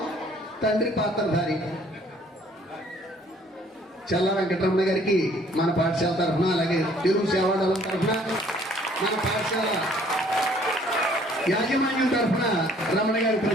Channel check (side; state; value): both; normal; correlation 0.59